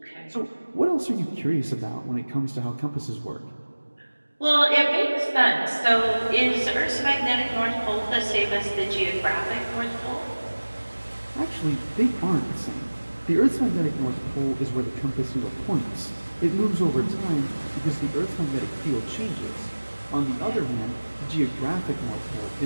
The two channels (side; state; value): both; inverted; correlation -1.00